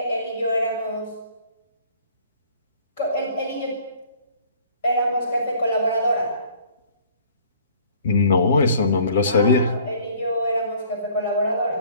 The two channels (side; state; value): both; inverted; correlation -0.55